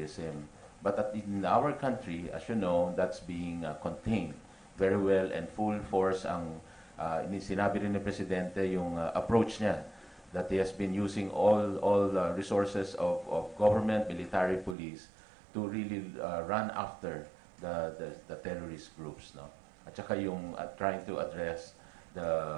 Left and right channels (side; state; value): left; drops out; at 14.8 s